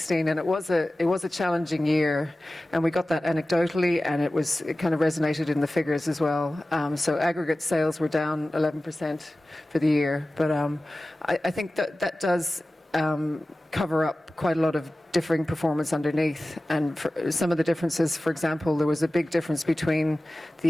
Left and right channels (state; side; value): normal; both; correlation 0.96